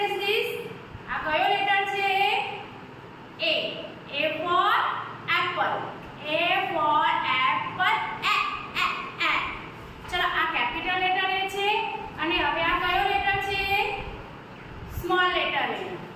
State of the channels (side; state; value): both; identical; correlation 1.00